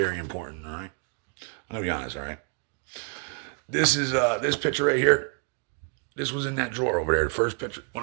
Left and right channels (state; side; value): quieter; left; 36.9 dB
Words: important, all right? I'm going to be honest, all right? This is, this picture right here. This was in that drawer over there, the first picture. When